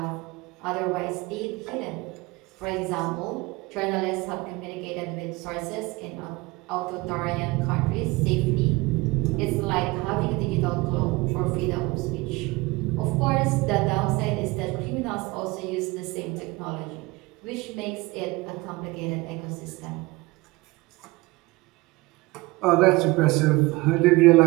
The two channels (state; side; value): quieter; left; 22.6 dB